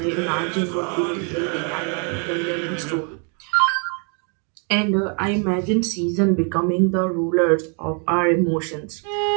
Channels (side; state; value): left; quieter; 39.0 dB